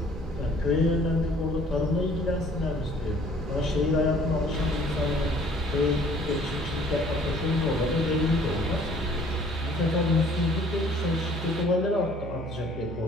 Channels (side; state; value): both; normal; correlation 0.56